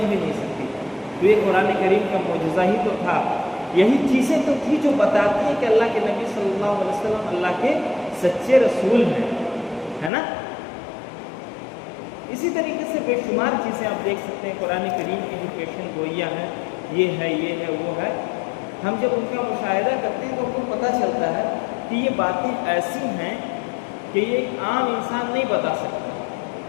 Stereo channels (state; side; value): drops out; right; at 10.1 s